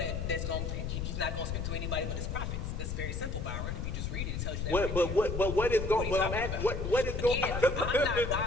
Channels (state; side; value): noise; left; rumble, 3 dB below the sound